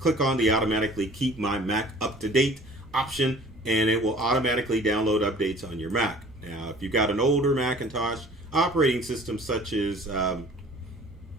on the automatically keep my Mac up to date option, and it will automatically download updates on your Mac. Now, if you've got an older Macintosh operating system such as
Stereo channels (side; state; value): both; normal; correlation 0.48